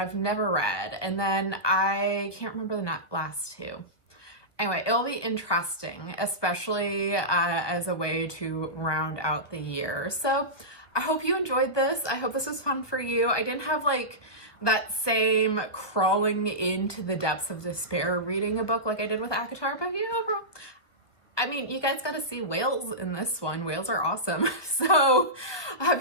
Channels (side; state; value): right; late; 1.2 ms